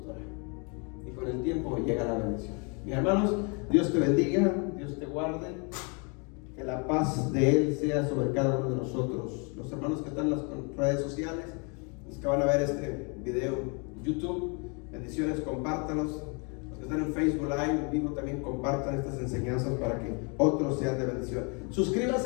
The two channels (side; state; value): right; quieter; 34.2 dB